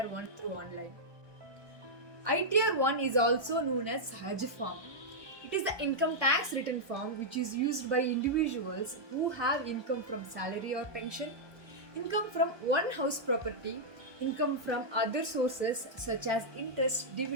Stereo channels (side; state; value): left; late; 1.2 ms